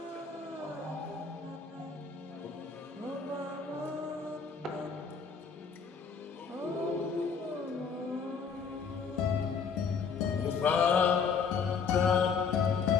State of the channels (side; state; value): right; quieter; 5.9 dB